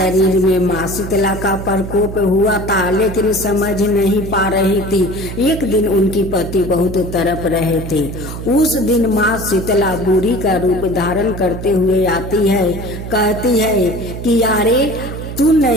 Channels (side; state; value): right; noise; hum, 8 dB below the sound